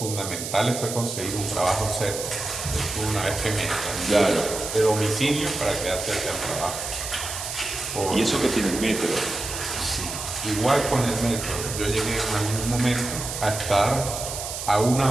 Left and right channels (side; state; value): right; noise; hiss, 6 dB below the sound